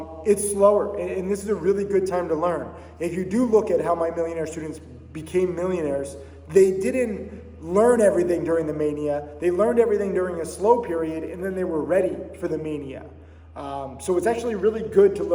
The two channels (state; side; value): identical; both; correlation 1.00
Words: It's slower, and this is a really good time to learn. If you do look at how my millionaire students became millionaires, they didn't learn everything during the mania. They learned everything during a slow period, and then they were ready for the mania. So it's actually really good to